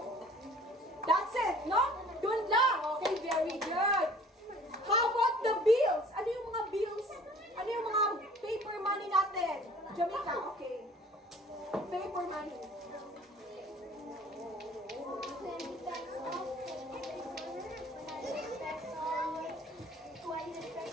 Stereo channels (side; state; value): both; normal; correlation 0.50